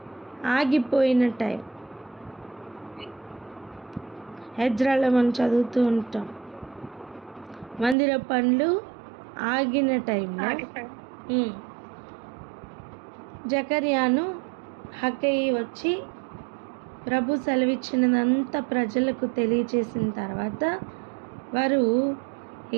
ఆగిపోయిన టైం. హెజ్రాలో మనం చదువుతూ ఉంటాం, మందిర పనులు ఆగిన టైంలో జకర్యాను హగ్గయి వచ్చి ప్రభు సెలవిచ్చినదంతా ప్రజలకు తెలియచేసిన తర్వాత వారు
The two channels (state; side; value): drops out; left; at 8.0 s